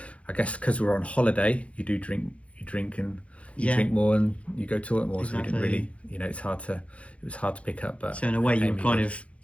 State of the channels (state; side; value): late; right; 0.063 ms